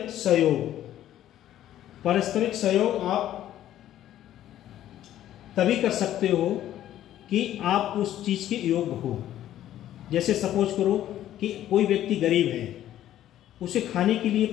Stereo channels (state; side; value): quieter; right; 12.4 dB